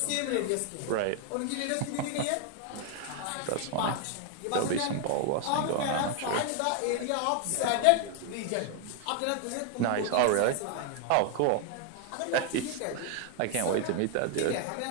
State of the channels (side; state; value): both; different; correlation 0.00